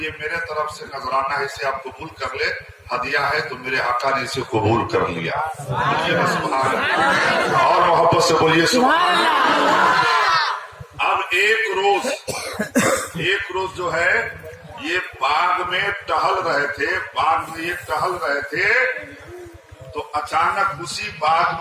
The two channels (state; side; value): identical; both; correlation 1.00